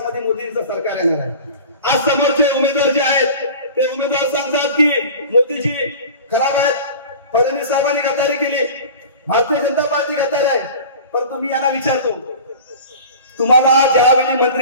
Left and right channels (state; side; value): inverted; both; correlation -0.38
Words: मोदींचं सरकार येणार आहे. आज समोरचे उमेदवार जे आहेत ते उमेदवार सांगतात की मोदीजी खराब आहेत, फडणवीस साहेबांनी गद्दारी केली, भारतीय जनता पार्टी गद्दार आहे. परंतु मी यांना विचारतो, तुम्हाला ज्यावेळी